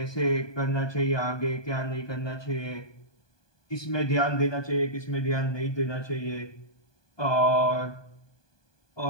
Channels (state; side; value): late; right; 1.2 ms